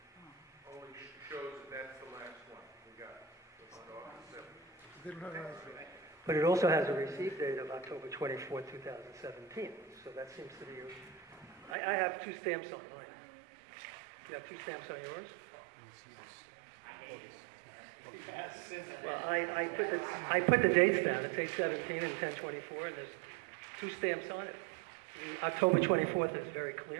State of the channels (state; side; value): drops out; left; at 11.8 s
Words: only shows that that's the last one we got on August 7th. But it also has a receipt date of October 24, 2017. So that seems to be I have two stamps on mine. You have two stamps on yours? Well, I put the dates down. It's 8/17 and 10/24, and there's two stamps on it. The October 24th is very